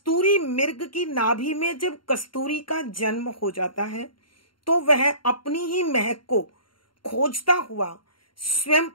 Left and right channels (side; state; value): right; late; 0.72 ms